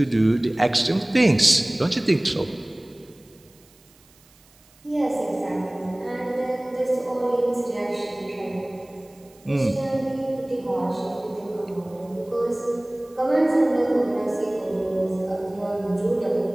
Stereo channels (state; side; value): noise; right; hiss, 29 dB below the sound